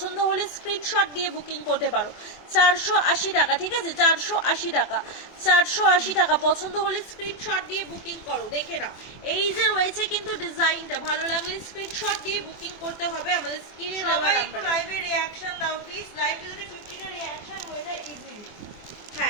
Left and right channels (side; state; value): right; late; 24 ms